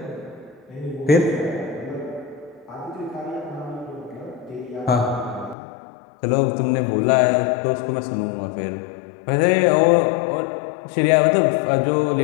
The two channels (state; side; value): drops out; right; at 5.6 s